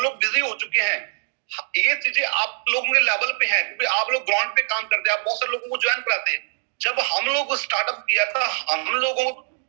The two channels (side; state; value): left; silent; digital silence